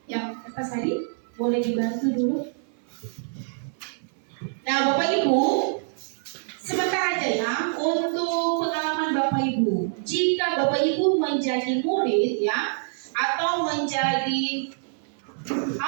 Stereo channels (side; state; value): left; silent; 56 dB below the other